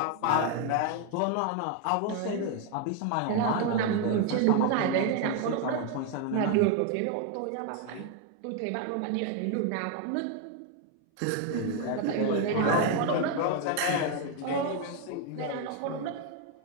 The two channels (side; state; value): both; different; correlation 0.01